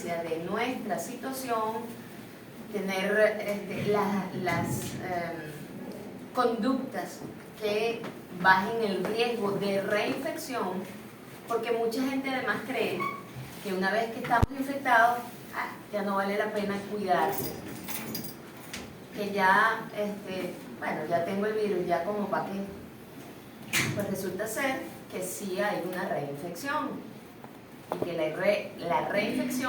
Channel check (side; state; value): both; identical; correlation 1.00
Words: de nuestra situación, tener las conductas que bajen el riesgo de reinfección, porque mucha gente además cree que una vez que estamos infectados, ya no vale la pena cuidarse, que ya, bueno, ya tengo el virus, ya como para qué. Pues resulta ser que sí hay una reinfección y que la